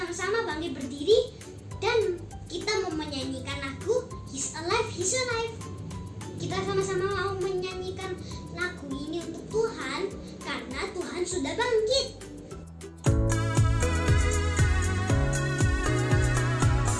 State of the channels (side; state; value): both; identical; correlation 1.00